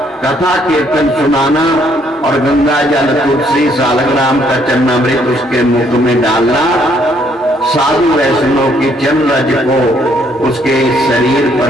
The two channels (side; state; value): both; normal; correlation 0.68